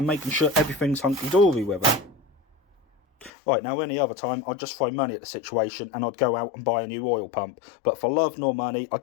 making sure everything's hunky-dory with it. Right, now any other time I'd just throw money at the situation and I'd go out and buy a new oil pump, but for love nor money I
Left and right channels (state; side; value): drops out; right; at 3.3 s